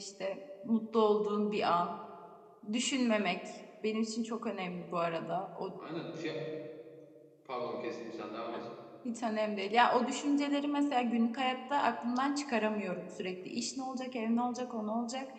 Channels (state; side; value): identical; both; correlation 1.00